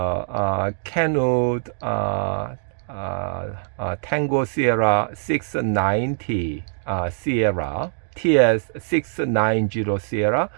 Canute Tango Sierra 690 Sierra TS 690 Sierra.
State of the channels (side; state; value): left; silent; digital silence